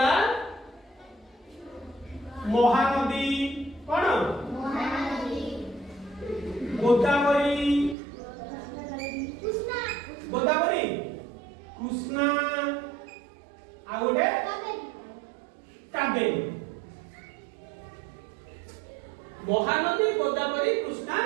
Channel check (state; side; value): drops out; left; at 8.0 s